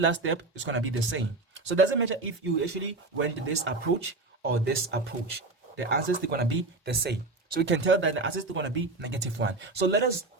step is going to be the same. So it doesn't matter if you actually went this approach or this approach. The answers are going to be the same. So we can tell that the answers are going to be -1. So let us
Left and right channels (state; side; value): quieter; left; 3.3 dB